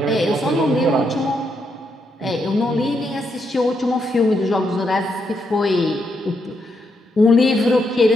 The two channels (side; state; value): both; normal; correlation 0.79